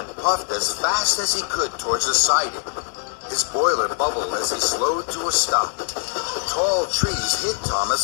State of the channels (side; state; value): right; silent; 57 dB below the other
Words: puffed as fast as he could towards the siding. His boiler bubbled as he slowed to a stop. Tall trees hid